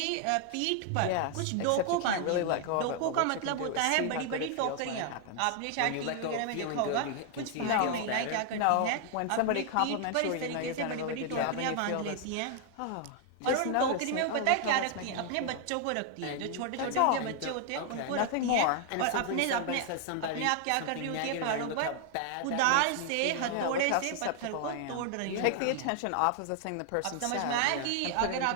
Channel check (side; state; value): both; different; correlation 0.00